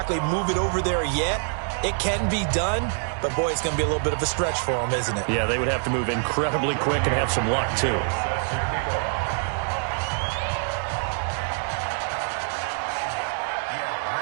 move it over there yet. It can be done, but boy, it's going to be a little bit of a stretch for them, isn't it? Yeah, they would have to move incredibly quick and have some luck, too.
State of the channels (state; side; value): silent; left; 60 dB below the other